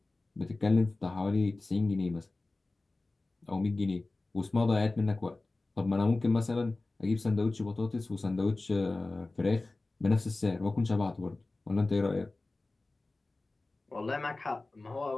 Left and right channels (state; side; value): quieter; right; 3.2 dB